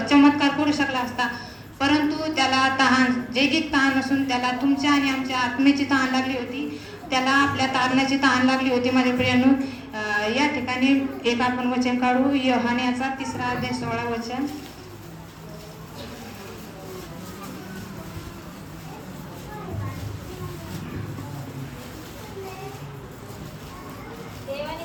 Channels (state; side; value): identical; both; correlation 1.00